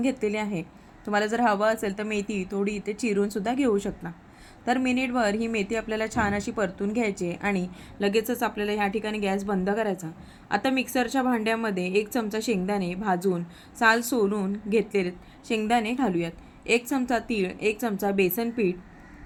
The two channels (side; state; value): both; identical; correlation 1.00